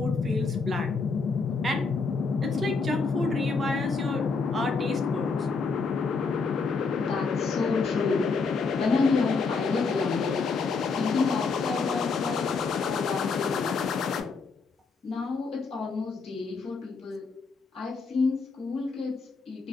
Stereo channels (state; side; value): quieter; right; 4.6 dB